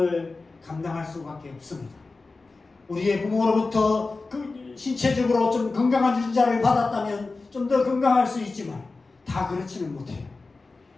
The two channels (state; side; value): quieter; right; 3.7 dB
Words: 감당할 수밖에 없습니다. 우리의 부모로부터 신체적으로 좀 건강한 유전자를 받았다면 좀 더 건강할 수 있지만 다 그렇지는 못해요.